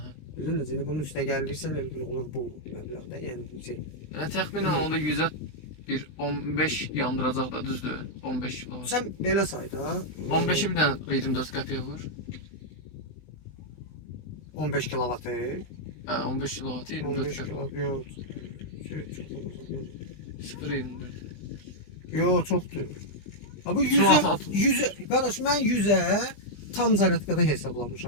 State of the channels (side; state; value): right; late; 20 ms